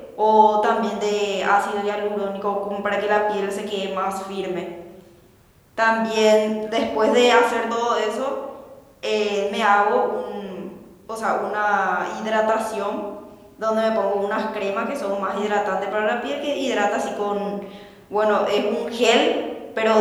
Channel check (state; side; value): identical; both; correlation 1.00